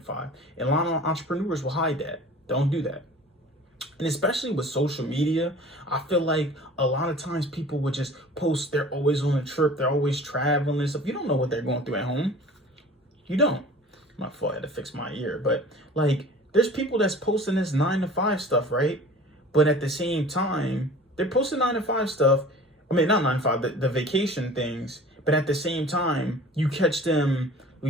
5. And a lot of entrepreneurs will hide that. Don't do that. And especially with social media, I feel like a lot of times people would just post they're always on a trip, they're always traveling and stuff. You don't know what they're going through at home. You don't. My fault, I had to fix my ear. But like, there's people that's posting this 9 to 5 stuff, right? But at the same time, they're posting 9 to 5 stuff. I mean, not 9 to 5, the vacation things. But at the same time, you catch them,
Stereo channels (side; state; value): both; normal; correlation 0.43